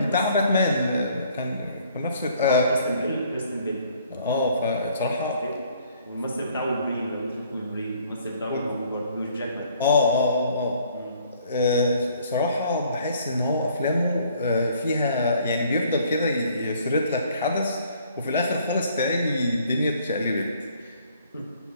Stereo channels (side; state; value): both; inverted; correlation -0.61